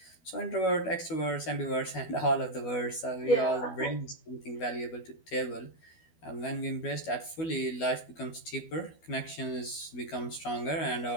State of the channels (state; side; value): late; right; 12 ms